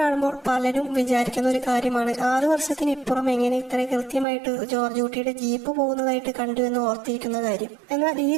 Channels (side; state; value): left; drops out; at 4.2 s